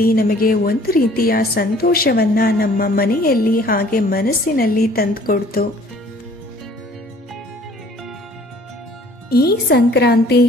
ನಮಗೆ ಒಂದು ರೀತಿಯ ಸಂತೋಷವನ್ನ ನಮ್ಮ ಮನೆಯಲ್ಲಿ ಹಾಗೆ ಮನಸ್ಸಿನಲ್ಲಿ ತಂದುಕೊಡ್ತು. ಈ ಸಂಕ್ರಾಂತಿ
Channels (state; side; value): normal; both; correlation 0.54